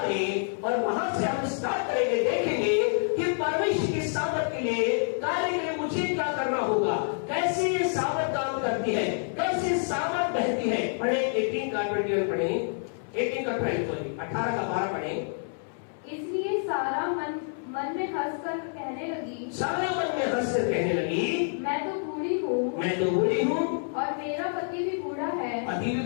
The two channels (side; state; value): right; silent; 59 dB below the other